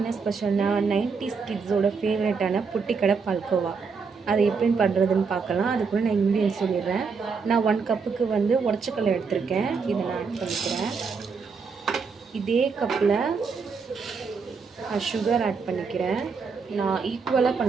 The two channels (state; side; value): quieter; left; 5.2 dB